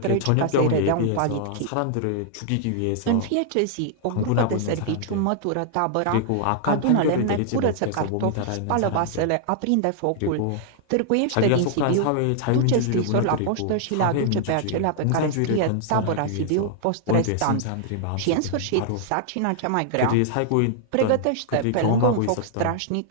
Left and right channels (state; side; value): different; both; correlation -0.01